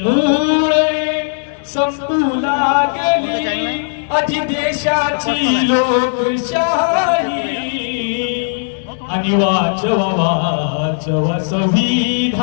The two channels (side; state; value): right; silent; digital silence